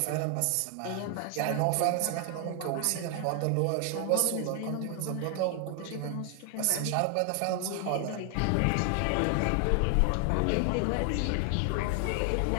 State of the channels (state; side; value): different; both; correlation 0.00